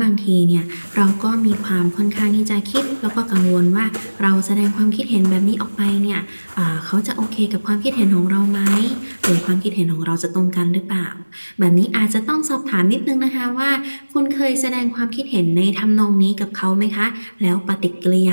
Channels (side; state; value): both; inverted; correlation -1.00